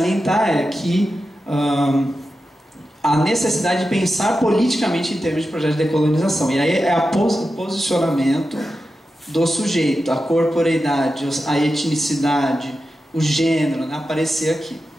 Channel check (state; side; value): normal; both; correlation 0.91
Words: é que a necessidade de pensar politicamente em termos de projeto de decolonização. E aí é o posicionamento do sujeito, a corporeidade, a etnicidade, o gênero, né, aparecer aqui.